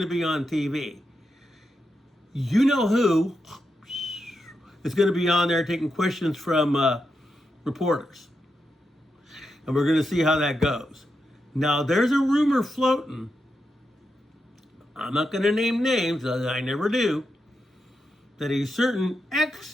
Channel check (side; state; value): both; normal; correlation 0.86